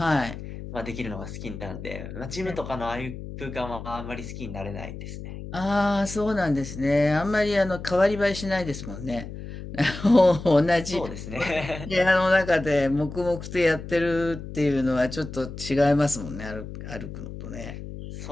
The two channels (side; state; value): left; noise; hum, 10 dB below the sound